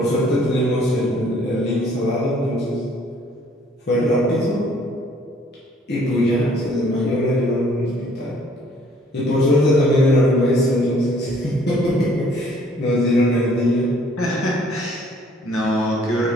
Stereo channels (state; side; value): normal; both; correlation 0.60